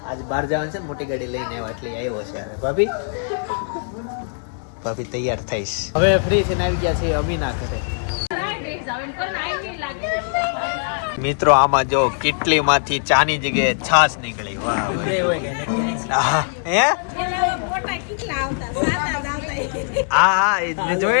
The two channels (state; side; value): silent; right; 65 dB below the other